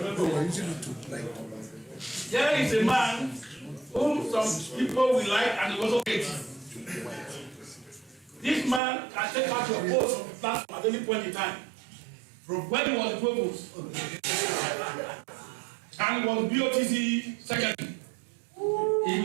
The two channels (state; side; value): drops out; left; at 8.8 s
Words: There is a man whom some people will like and also hate. This man can take out your post from the platform at any point in time. When he was the provost and was BOTC secretary, he